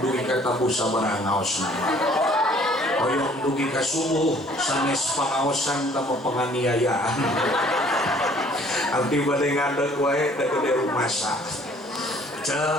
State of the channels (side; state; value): both; normal; correlation 0.57